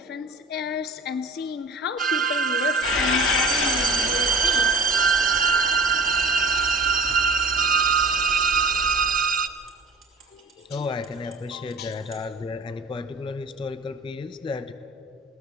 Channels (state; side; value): quieter; left; 3.1 dB